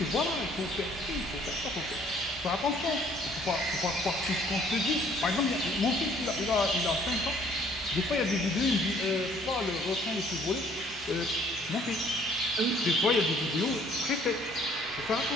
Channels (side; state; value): both; normal; correlation 0.60